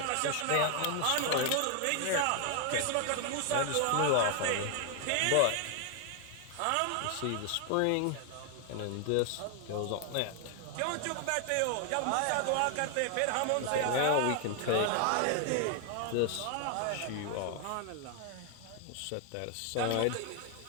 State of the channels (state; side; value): different; both; correlation 0.00